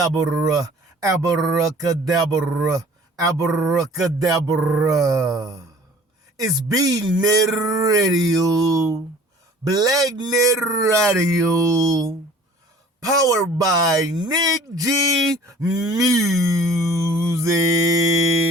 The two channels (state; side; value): normal; both; correlation 0.49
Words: abracadabra, abracadabra. It's B-Net Radio, Black-Net Radio, powered by Nick G Music.